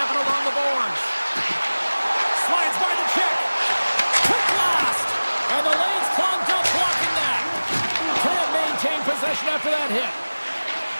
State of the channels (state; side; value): inverted; both; correlation -1.00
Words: along the boards. Slides by the check. Quick blast. And the lane's clogged up blocking that. Can't maintain possession after that hit.